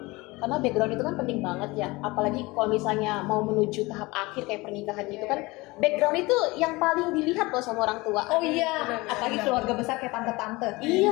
Karena background itu kan penting banget ya. Apalagi kalau misalnya mau menuju tahap akhir kayak pernikahan gitu kan, background itu yang paling dilihat loh sama orang tua. Oh iya, apalagi keluarga besar kayak tante-tante.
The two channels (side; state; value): right; quieter; 22.6 dB